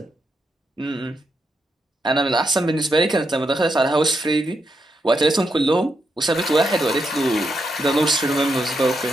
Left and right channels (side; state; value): both; normal; correlation 0.82